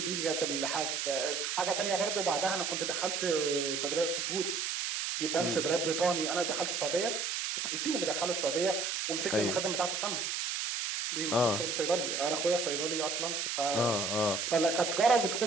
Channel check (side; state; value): right; noise; hiss, 1 dB below the sound